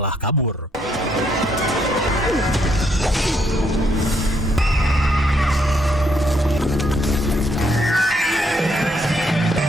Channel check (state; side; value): normal; both; correlation 0.73